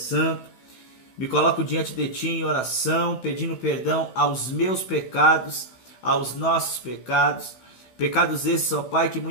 Me coloco diante de Ti em oração, pedindo perdão aos meus pecados, aos nossos pecados. Pecados esses, ó Pai, que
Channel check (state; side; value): late; right; 16 ms